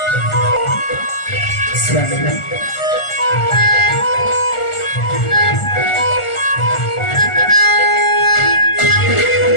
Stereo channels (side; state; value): right; late; 1.4 ms